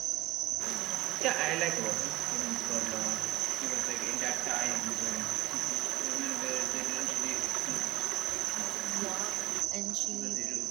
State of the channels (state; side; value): quieter; left; 17.8 dB